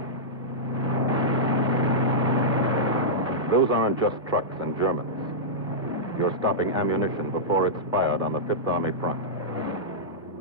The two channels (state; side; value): normal; both; correlation -0.11